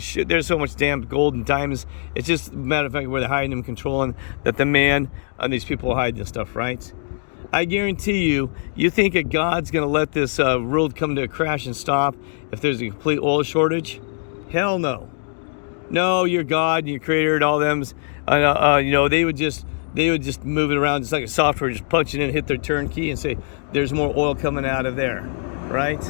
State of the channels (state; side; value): silent; right; 57 dB below the other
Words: There's so much damn gold and diamonds. It's just a matter of fact where they're hiding them, controlling, that the man and these people are hiding this stuff, right? I guarantee you think that God's going to let this world come to a crash and stop if there's a complete oil shortage? Hell no. No, your God and your creator and all them, they would just move it around just like a software, just punch it in, hit their turn key and say, there's more oil coming out of there, right?